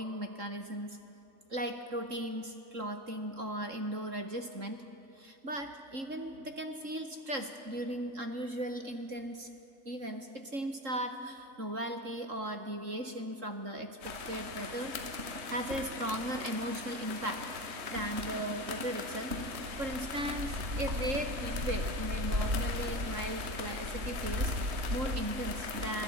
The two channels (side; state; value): left; late; 3.7 ms